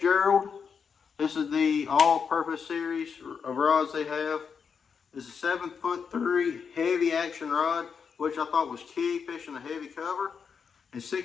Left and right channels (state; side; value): quieter; right; 6.3 dB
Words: This is the all-purpose series of rods they have. This is a 7'3" heavy action rod, which I thought was key fishing a heavy cover. It's